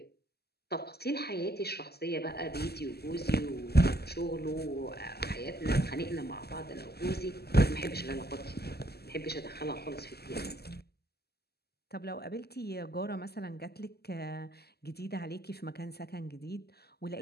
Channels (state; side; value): late; right; 0.46 ms